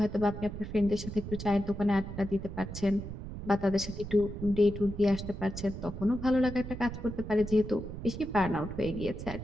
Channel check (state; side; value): noise; right; rumble, 9 dB below the sound